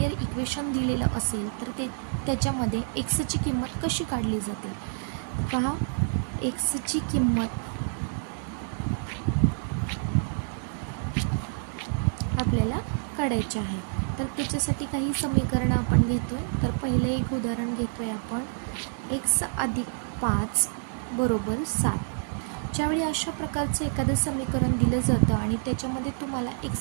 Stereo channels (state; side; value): silent; left; digital silence